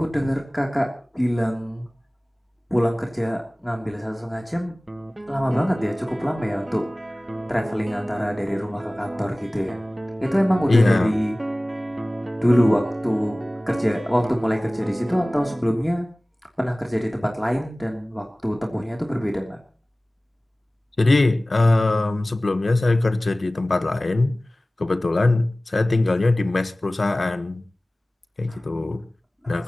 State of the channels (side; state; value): both; normal; correlation 0.98